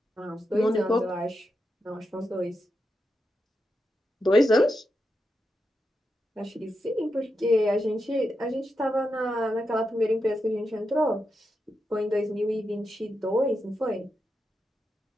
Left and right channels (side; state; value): both; normal; correlation 0.86